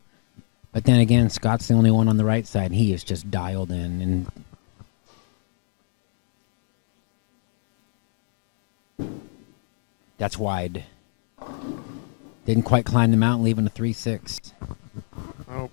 then again, Scott's the only one on the right side. He is just dialed in. And that's wide. Didn't quite climb the mountain, leaving a 3-6. Oh,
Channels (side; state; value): right; silent; 62 dB below the other